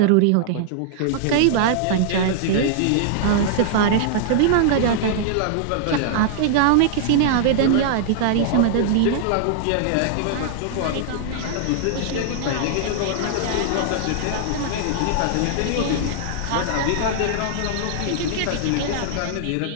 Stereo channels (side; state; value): both; different; correlation -0.01